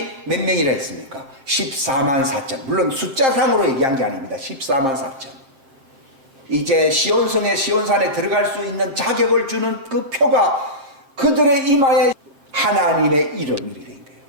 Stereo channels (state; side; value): late; left; 7.5 ms